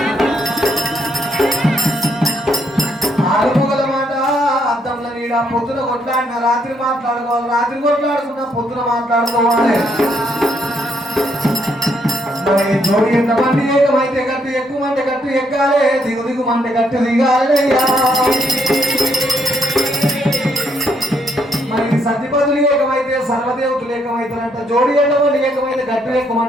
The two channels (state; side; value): normal; both; correlation 0.73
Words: ఆడుకోగల మాట అద్దంలో నీడ పొద్దున కొట్లాడిన రాత్రి మాట్లాడుకోవాలి రాత్రి కొట్లాడుకున్నా పొద్దున మాట్లాడుకోవాలి మరి జోడి ఎంతమంది ఏకమైతే గట్టు ఎక్కువ మంది గట్టు ఎక్కాలి దిగు దిగు మంది గట్టు దిగాలి మరి సతిపదులు ఏకమైతే సర్వదేవతలు ఏకమైతారంట జోడి ఎంతమంది ఏకమైతే గట్టు ఎక్కువ